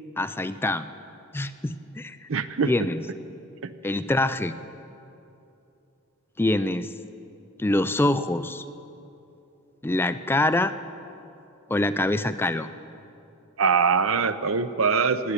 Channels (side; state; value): both; normal; correlation 0.36